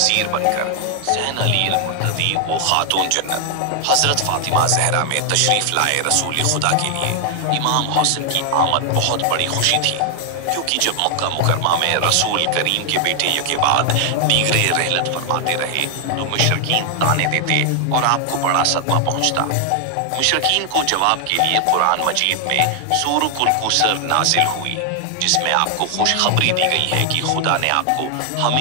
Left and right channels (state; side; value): different; both; correlation 0.00